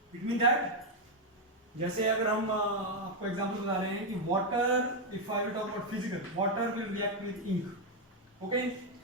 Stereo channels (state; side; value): normal; both; correlation 0.02